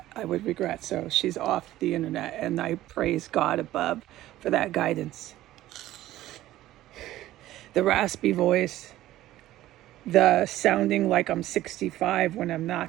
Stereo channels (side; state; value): left; quieter; 14.8 dB